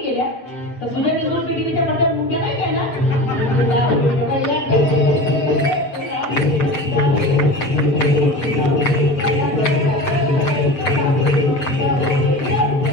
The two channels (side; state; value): right; late; 7.4 ms